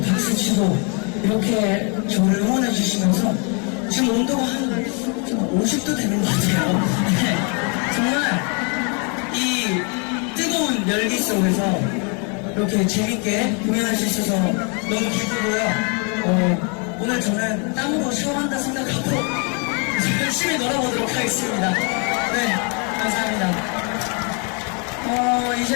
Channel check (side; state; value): right; quieter; 36.2 dB